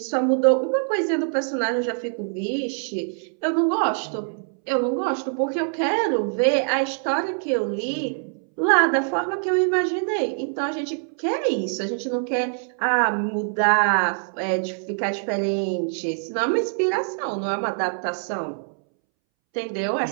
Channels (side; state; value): left; silent; 63 dB below the other